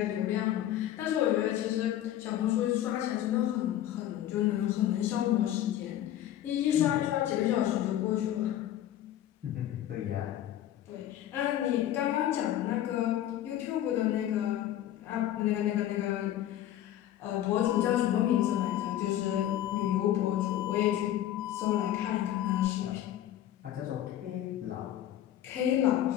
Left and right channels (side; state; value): right; quieter; 12.3 dB